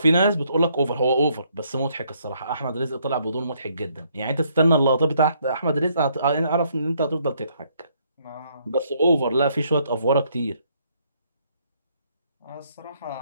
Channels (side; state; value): both; inverted; correlation -0.69